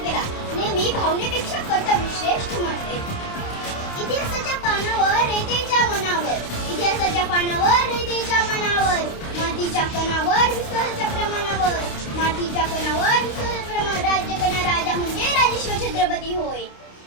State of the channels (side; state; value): right; late; 29 ms